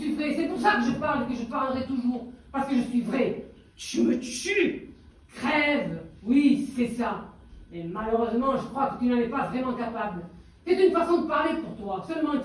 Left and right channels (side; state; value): both; identical; correlation 1.00